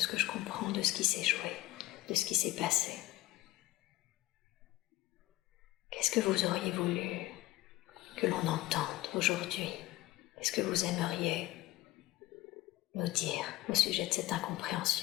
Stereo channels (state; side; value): quieter; right; 17.0 dB